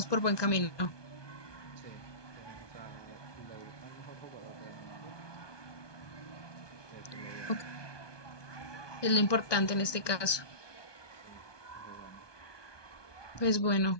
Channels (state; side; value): late; right; 1.2 ms